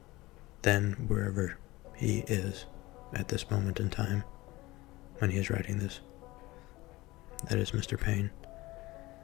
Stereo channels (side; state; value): right; quieter; 19.9 dB